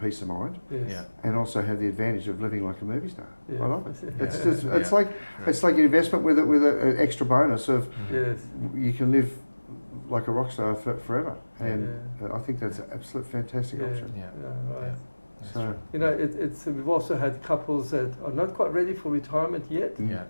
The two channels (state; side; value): inverted; both; correlation -1.00